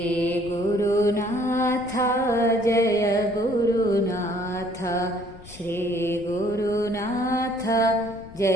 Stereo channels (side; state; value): left; noise; rumble, 18 dB below the sound